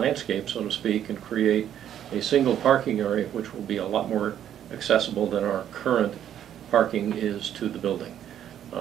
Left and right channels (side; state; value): left; quieter; 10.3 dB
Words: so to speak, and create a single parking area which will be a lot more accessible than our current parking is to the building.